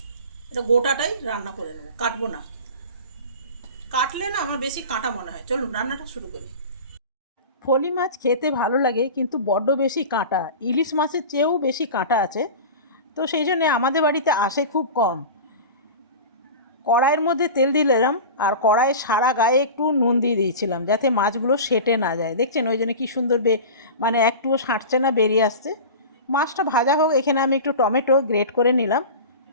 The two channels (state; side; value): inverted; both; correlation -0.32